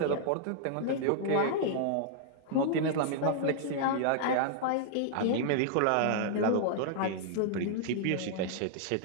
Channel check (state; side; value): different; both; correlation -0.01